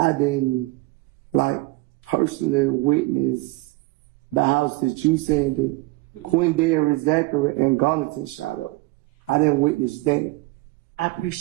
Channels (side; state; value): left; quieter; 21.5 dB